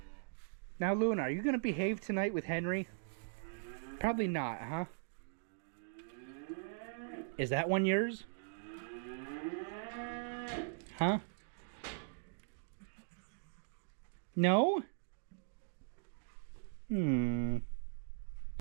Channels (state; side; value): silent; left; digital silence